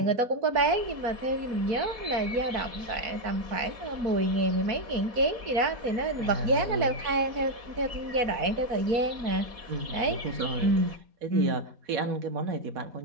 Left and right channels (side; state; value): left; late; 4.1 ms